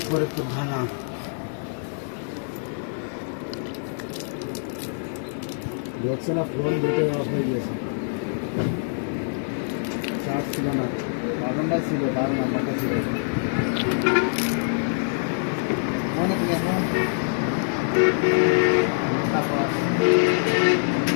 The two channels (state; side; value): silent; right; digital silence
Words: ফরিদপুর থানা। দেখছে না ফোন দুটো অফ হয়ে গেছে, চার্জ ছিল না, বাটনটা ছিল, তার নাম্বারটা ছিল। মনে থেকে এখন